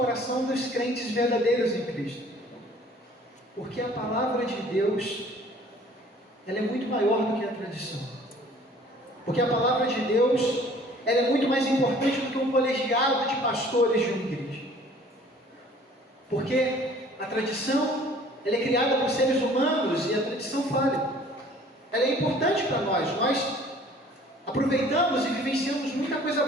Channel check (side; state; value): both; normal; correlation 0.53